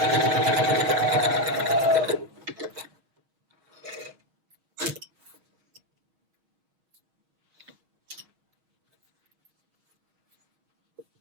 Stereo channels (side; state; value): left; late; 6.5 ms